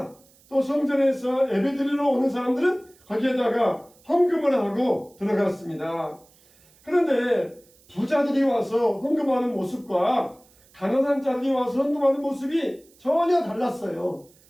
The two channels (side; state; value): right; noise; hiss, 30 dB below the sound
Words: 또 성전에서 예배드리러 오는 사람들은 거기에다가 헌금을 하고 들어갔습니다. 그런데 부자들이 와서 헌금하는 모습과 가난한 자들이 와서 헌금하는 모습이 전혀 달랐어요.